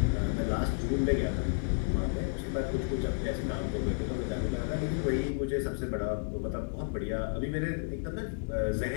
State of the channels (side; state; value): right; silent; digital silence